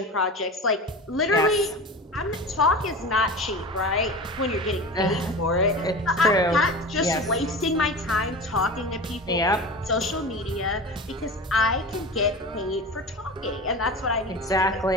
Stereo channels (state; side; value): normal; both; correlation 0.31